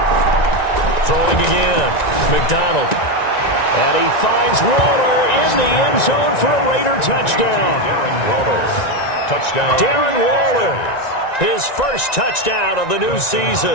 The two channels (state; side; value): late; right; 1.9 ms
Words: Throwing again. McDonald. And he finds Waller in the end zone for a Raider touchdown. Darren Waller. Touchdown. Darren Waller. His first touchdown of the new